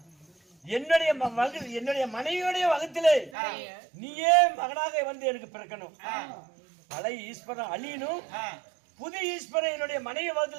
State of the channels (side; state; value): left; drops out; at 3.3 s